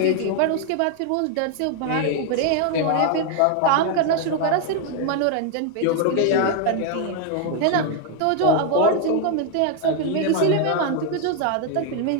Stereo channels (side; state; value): both; different; correlation 0.01